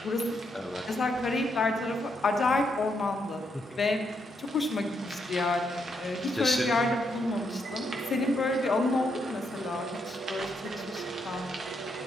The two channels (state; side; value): normal; both; correlation 0.78